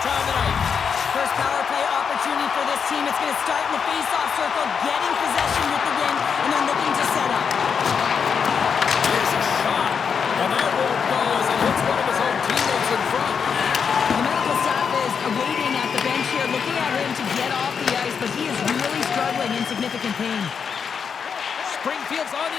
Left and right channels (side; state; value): right; quieter; 6.5 dB